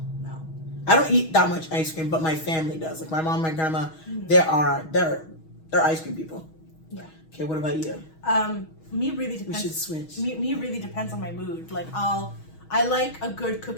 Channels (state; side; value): late; right; 6.3 ms